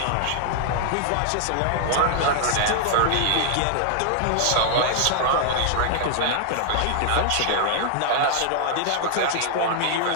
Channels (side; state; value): both; different; correlation 0.00